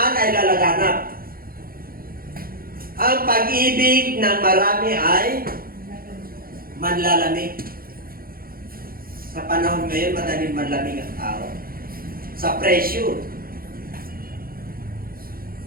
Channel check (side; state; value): left; late; 0.42 ms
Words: ay lalaganap. Ang pag-ibig ng marami ay manlalamig. Sa panahon ngayon, madaling manlamig ang tao. Sa pressure.